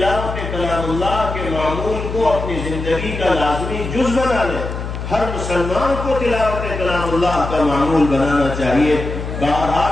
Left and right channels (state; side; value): noise; left; hum, 6 dB below the sound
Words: کلام اللہ کے معمول کو اپنی زندگی کا لازمی جز بنا لے۔ ہر مسلمان کو تلاوت کلام اللہ کا معمول بنانا چاہیے۔